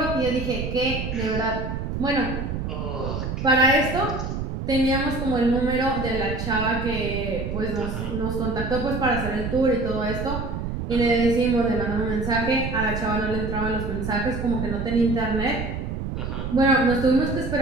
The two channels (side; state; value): right; noise; rumble, 4 dB below the sound